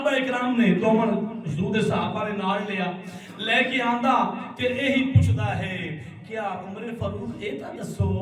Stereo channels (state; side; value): identical; both; correlation 1.00